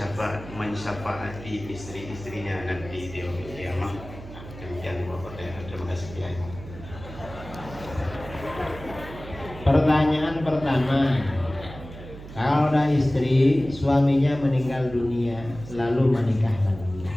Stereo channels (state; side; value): noise; right; hum, 14 dB below the sound